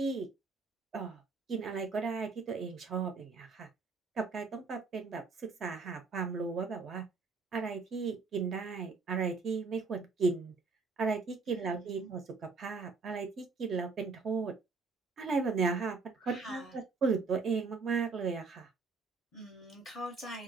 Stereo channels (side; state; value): left; quieter; 4.4 dB